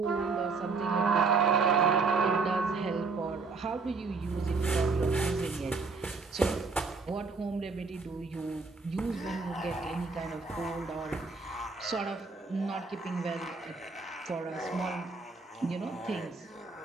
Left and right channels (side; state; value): left; quieter; 4.3 dB